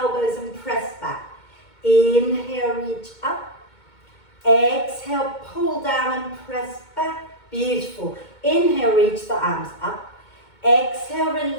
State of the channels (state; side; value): late; right; 2.2 ms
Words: and press back. Inhale, reach up. Exhale, pull down and press back. Beautiful. Inhale, reach the arms up. Exhale,